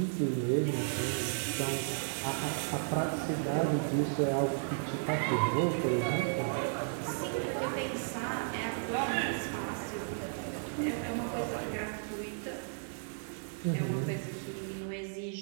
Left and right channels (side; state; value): left; silent; 55 dB below the other